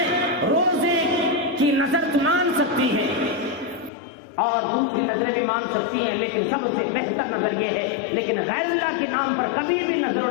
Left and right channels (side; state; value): right; drops out; at 3.9 s